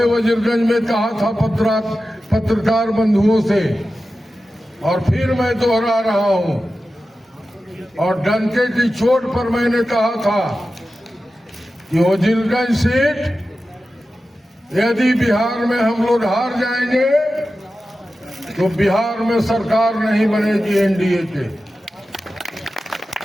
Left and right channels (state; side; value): normal; both; correlation 0.93